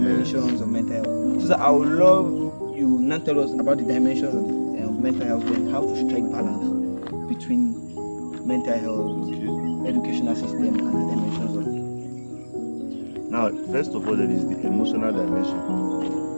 of mental health. So sir, I would love you now tell us about the dimensions of mental health and how to strike balance between mental health, educational system, and the dimensions of it. Now, first of all, there is the emotional dimension.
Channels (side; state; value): both; inverted; correlation -1.00